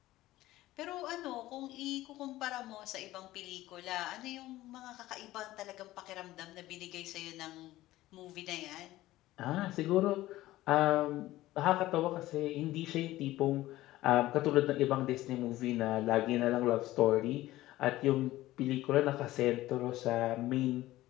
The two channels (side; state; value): right; quieter; 16.3 dB